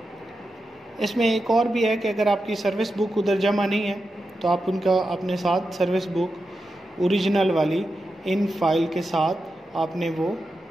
इसमें एक और भी है कि अगर आपकी सर्विस बुक उधर जमा नहीं है तो आप उनका अपने साथ सर्विस बुक ओरिजिनल वाली इन फाइल के साथ आपने वो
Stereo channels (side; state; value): both; normal; correlation 0.89